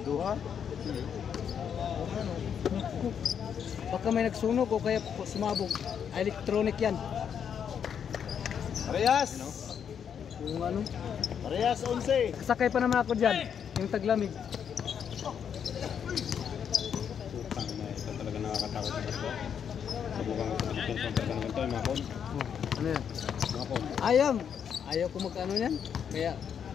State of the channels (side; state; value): right; quieter; 7.9 dB